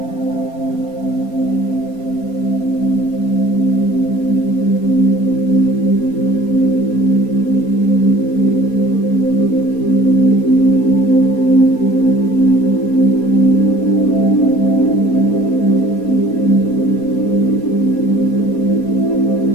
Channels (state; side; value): late; right; 4.2 ms